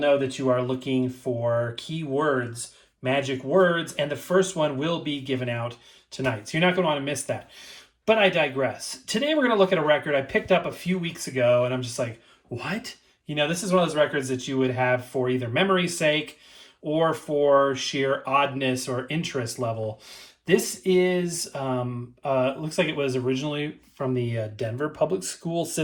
that you are looking for keywords, magic words, and the first one will be given out tonight. So you're not going to want to miss that. But I digress. Today we're going to look at a record I picked up a few weeks ago, and I'm just like, what? You know, this is one of those records that you would have for either memory's sake or for sheer oddness or interest level. This is, looks like it was originally from the Denver public school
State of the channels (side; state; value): both; identical; correlation 1.00